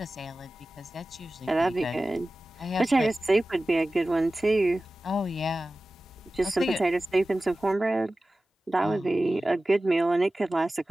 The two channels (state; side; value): normal; both; correlation 0.96